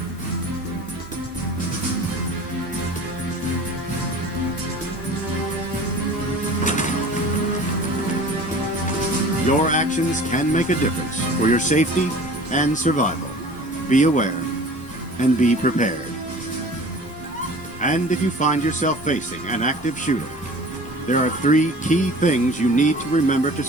Your actions can make a difference for your safety and survival. Be aware and be prepared. And if you find yourself facing an active shooter, there are 3 key things you need to remember to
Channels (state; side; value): normal; both; correlation 0.43